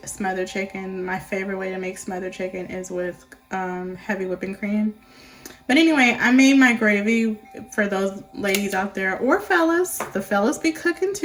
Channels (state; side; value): identical; both; correlation 1.00